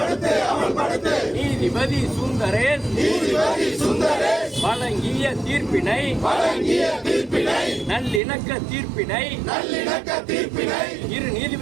நீதிபதி சுந்தரேஷ் வழங்கிய தீர்ப்பினை நல்லிணக்க தீர்ப்பினை இரு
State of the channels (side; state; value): left; drops out; at 8.2 s